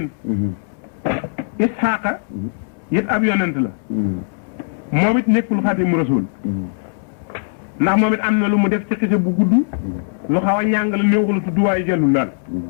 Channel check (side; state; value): right; silent; digital silence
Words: ishaaqa it ab yonent la moom it nekkul Xaadimu Rasuul ndax moom it am na lu mu def ci xise bu gudd lu xaw a ñàng la néew la tudd waaye jëlul daal